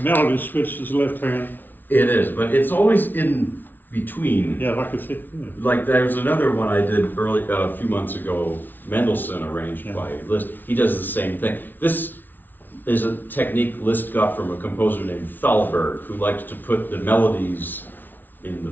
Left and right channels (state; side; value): late; right; 0.089 ms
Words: melody switches left hand. It is, but it's always in between. Yeah, like I said. Like there's another one I did early a few months ago, Mendelssohn arranged Yeah. by Liszt. He does the same thing. This is a technique Liszt got from a composer named Thalberg, who liked to put the melodies in the